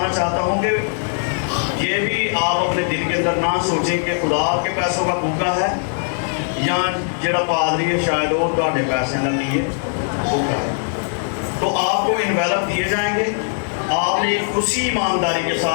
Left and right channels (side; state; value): right; silent; digital silence